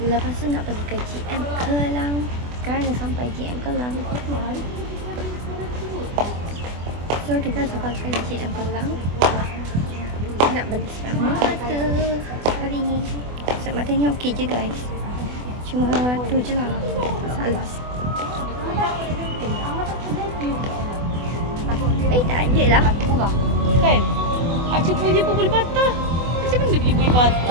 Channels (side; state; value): left; late; 24 ms